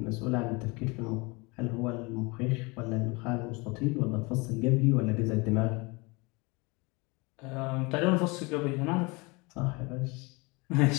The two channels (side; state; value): right; quieter; 26.9 dB